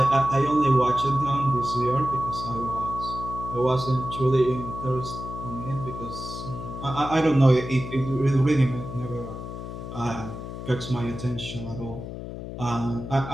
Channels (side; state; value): left; noise; hum, 9 dB below the sound